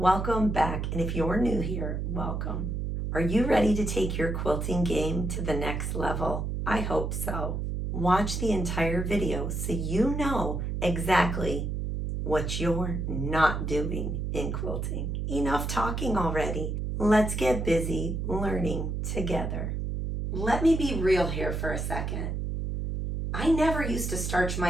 back, and if you're new here, welcome. Are you ready to take your quilting game to the next level? I hope so. Watch the entire video so you know exactly what you're not doing in quilting. Enough talking already. Let's get busy learning together. Let me be real here for a second. I never used to starch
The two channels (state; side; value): noise; right; hum, 2 dB below the sound